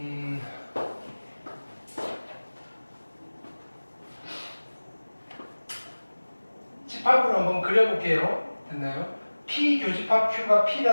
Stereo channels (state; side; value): inverted; both; correlation -1.00